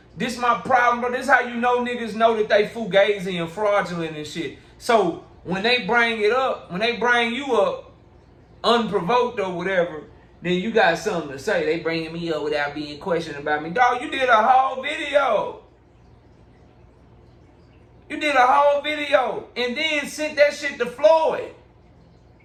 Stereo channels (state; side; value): identical; both; correlation 1.00